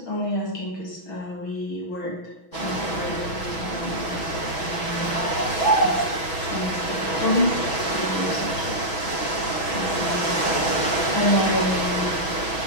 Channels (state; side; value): late; right; 6.2 ms